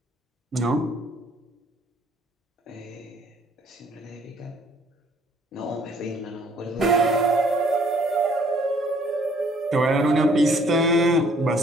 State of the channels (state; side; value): normal; both; correlation 0.61